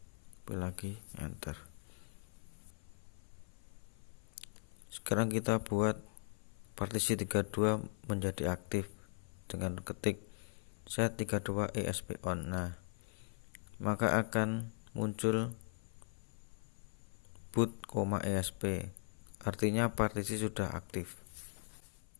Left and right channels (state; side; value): silent; right; 51 dB below the other